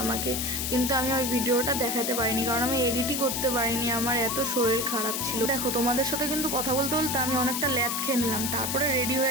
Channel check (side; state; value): left; noise; hiss, 1 dB below the sound